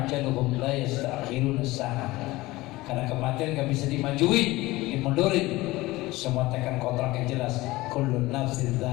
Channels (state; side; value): quieter; right; 19.5 dB